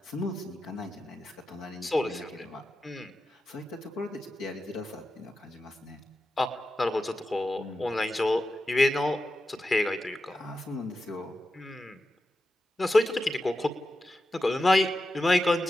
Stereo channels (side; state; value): both; normal; correlation 0.91